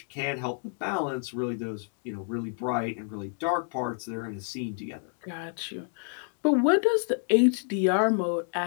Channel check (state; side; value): silent; right; 56 dB below the other